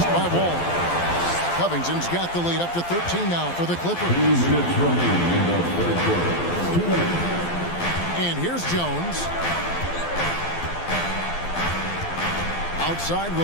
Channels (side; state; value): right; late; 12 ms